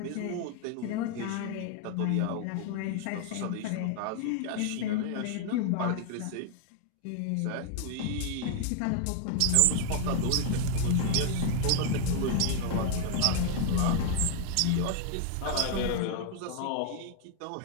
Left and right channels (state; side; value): different; both; correlation 0.00